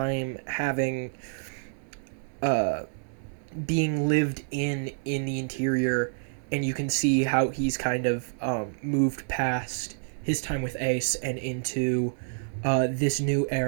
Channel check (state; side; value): silent; left; 59 dB below the other